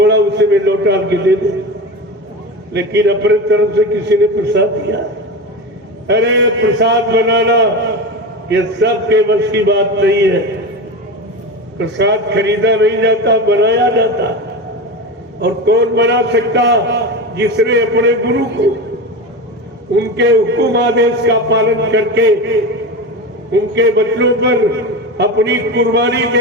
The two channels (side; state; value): both; normal; correlation 0.24